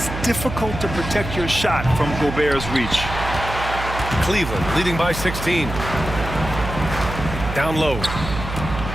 difficult to protect your shot from Gobert's reach. Cleveland leading by 16. Down low.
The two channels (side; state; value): right; noise; hum, 7 dB below the sound